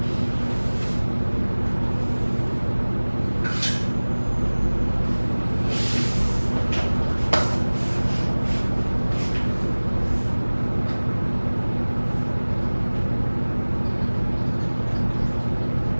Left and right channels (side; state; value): both; inverted; correlation -1.00